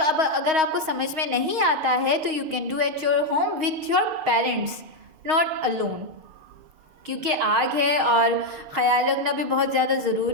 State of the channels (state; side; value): late; left; 6.4 ms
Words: अगर आपको समझ में नहीं आता है तो you can do at your home with your parents, not alone. क्योंकि आग है और ख्याल रखना भी बहुत ज़्यादा